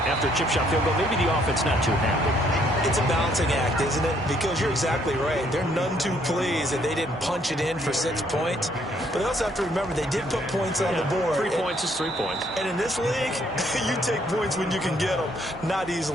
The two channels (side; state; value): both; normal; correlation 0.67